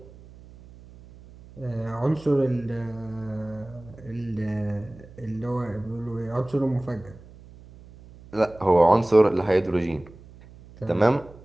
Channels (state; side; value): noise; right; hum, 21 dB below the sound